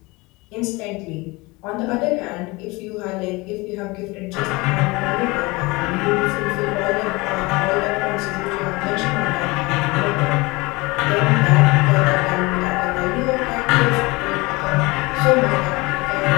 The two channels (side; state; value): right; quieter; 23.9 dB